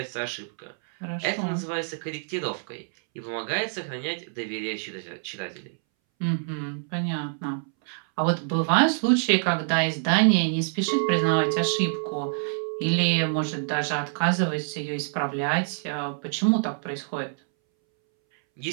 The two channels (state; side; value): silent; left; 61 dB below the other